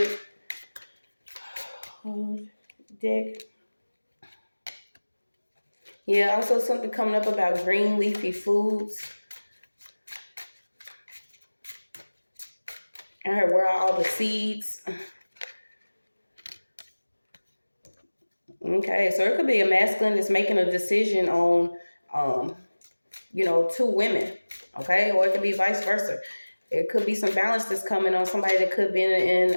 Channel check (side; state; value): both; inverted; correlation -1.00